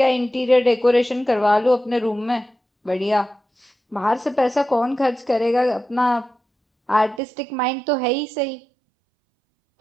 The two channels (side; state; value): left; drops out; at 7.2 s